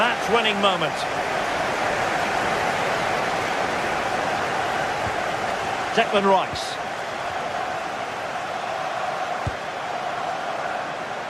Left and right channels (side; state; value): both; identical; correlation 1.00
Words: moment? Declan Rice.